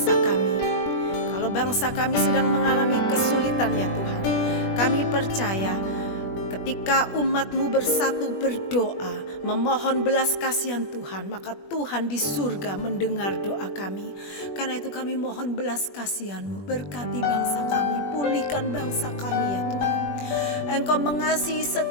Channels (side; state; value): right; late; 21 ms